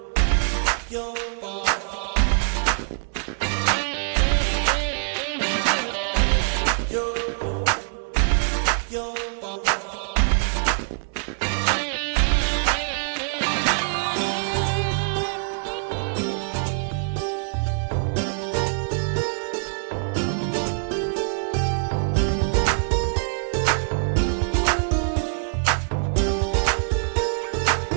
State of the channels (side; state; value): left; silent; digital silence